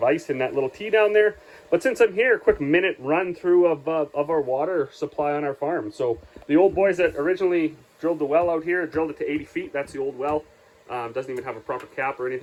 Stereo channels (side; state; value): both; identical; correlation 1.00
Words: ice in that little tea down there. But since I'm here, a quick minute run through of our water supply on our farm. So the old boys that originally drilled the well out here, drilled it to 80 feet. That's the old well. Doesn't even have a proper cap or